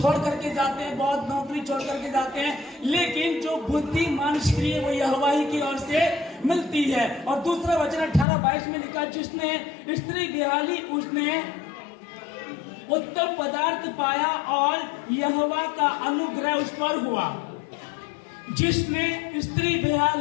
करके जाते हैं, बहुत नौकरी छोड़ करके जाते हैं, लेकिन जो बुद्धिमान स्त्री है वो यहोवा ही की ओर से मिलती है। और दूसरा वचन 18-22 में लिखा, जिसने स्त्री बिहाली उसने उत्तम पदार्थ पाया और यहोवा का अनुग्रह उस पर हुआ। जिसने स्त्री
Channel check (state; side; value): drops out; right; at 8.2 s